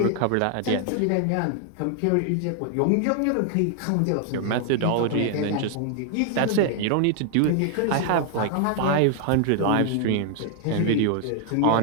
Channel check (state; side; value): different; both; correlation 0.00